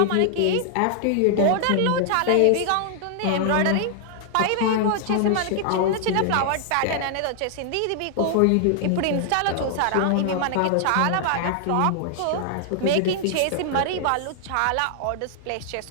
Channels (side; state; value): both; different; correlation -0.01